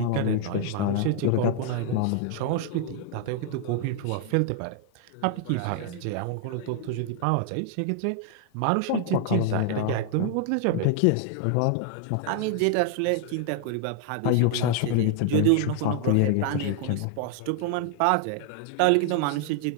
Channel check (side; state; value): both; different; correlation 0.00